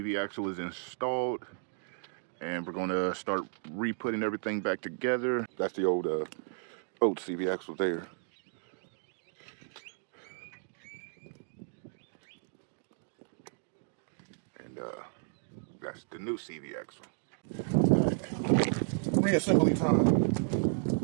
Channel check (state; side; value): silent; left; digital silence